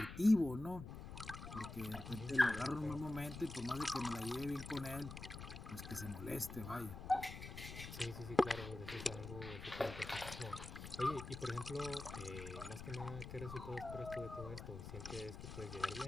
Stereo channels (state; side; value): noise; left; rumble, 9 dB below the sound